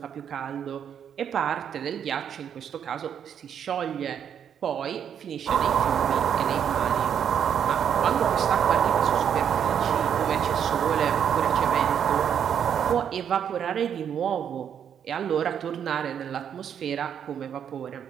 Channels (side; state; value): left; quieter; 8.5 dB